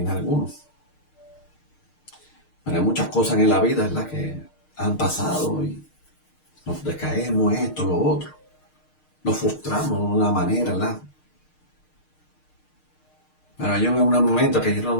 alguno. Pero hay muchas cosas en la vida, ¿verdad? Que han pasado y nos decaemos, esto, lo otro. Nos frustramos de una manera, ¿verdad? Pero yo en un momento que yo no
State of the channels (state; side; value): late; right; 6.5 ms